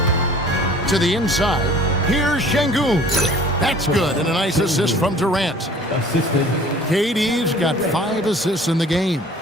To the inside, here's Sengun. That's good, and a nice assist from Durant. Assisted. KD's got 5 assists in the game.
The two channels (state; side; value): normal; both; correlation 0.49